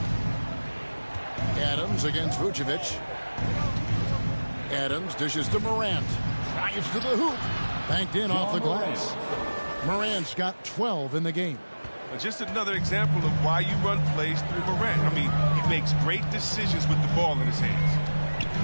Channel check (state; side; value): inverted; both; correlation -1.00